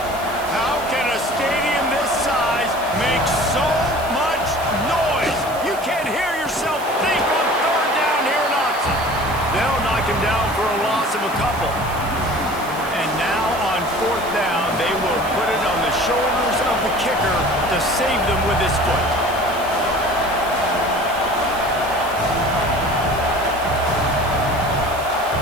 How can a stadium this size make so much noise? You can't hear yourself think on 3rd down here in Autzen. They'll knock him down for a loss of a couple. And now on 4th down, they will put it on the shoulders of the kicker to save them with his foot.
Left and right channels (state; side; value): noise; right; hiss, 16 dB below the sound